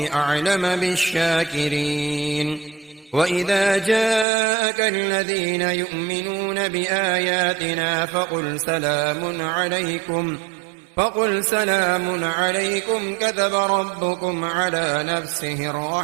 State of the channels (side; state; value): left; drops out; at 4.2 s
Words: بالشاكرين وإذا جاءك الذين يؤمنون بآياتنا فقل سلام عليكم كتب ربكم على نفسه